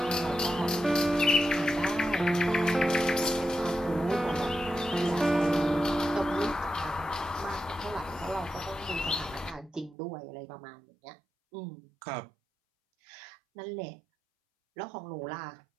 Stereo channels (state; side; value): drops out; left; at 10.0 s